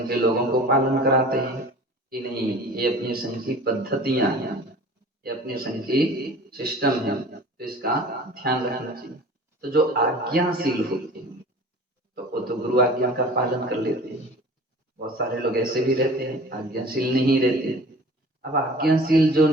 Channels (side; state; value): both; normal; correlation 0.43